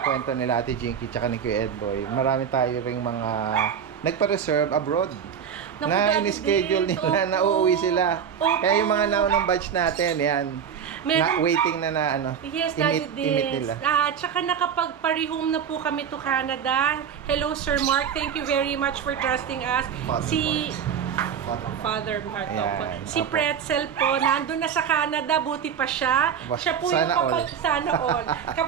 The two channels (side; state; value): left; quieter; 7.8 dB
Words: kwento nila Ate Jinky tsaka ni Kuya Edboy. Marami tayo ring mga nagpa-reserve abroad. Naku, Na Daddy in-schedule Dens, nila na opo. uuwi sila. Opo. Kaya yung mga naunang batch natin, yan. Meron- waiting na ano. Yes, Daddy imit Dens. nila. Tsaka nakapag-parehome na po kami to Canada. Hello, Sir Mark. Thank you very much for trusting us. Father Mark. Ayan, Opo. Si opo. Pretzel po, nandun na sa Canada, buti pa siya. Siya po yung Sana all. sana all.